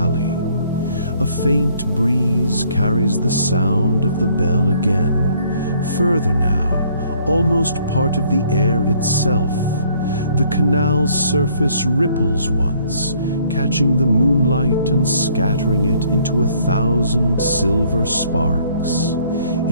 A faint breeze carries the sound of the bell again. Further now, almost part of the air itself. The canal's surface ripples once, catching the moonlight and scattering it into 1,000 silver sparks.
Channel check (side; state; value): both; inverted; correlation -0.62